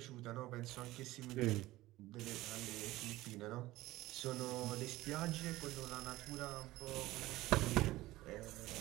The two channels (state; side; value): quieter; left; 17.5 dB